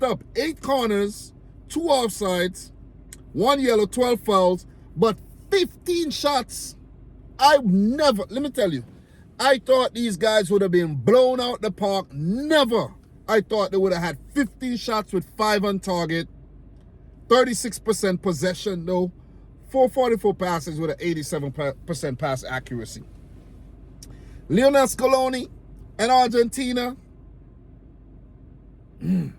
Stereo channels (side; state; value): both; identical; correlation 1.00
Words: up. 8 corners, 2 offsides, 1 yellow, 12 fouls, but 15 shots. Let me tell you, I thought these guys would have been blown out the park. Never. I thought they would have had 15 shots with 5 on target. 36% possession though. 444 passes with an 87% pass accuracy. Lionel Scaloni and Argentina.